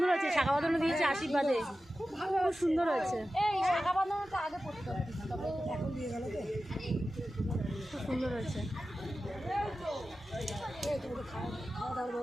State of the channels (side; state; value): both; normal; correlation 0.94